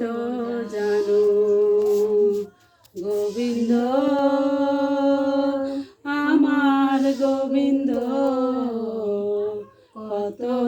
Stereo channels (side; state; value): both; identical; correlation 1.00